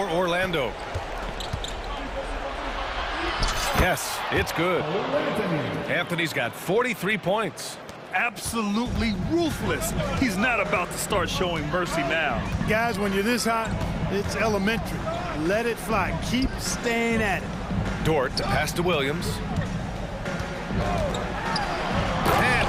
Orlando. Yes, it's good. Anthony's got 43 points. Absolutely ruthless. He's not about to start showing mercy now. Guys, when you're this hot, it's elementary. Let it fly. Keep staying at it. Dort to pass to Williams.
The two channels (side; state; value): both; identical; correlation 1.00